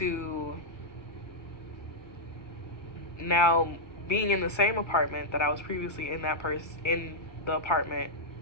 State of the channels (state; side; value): late; right; 1.6 ms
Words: now being in the same apartment that I was previously in the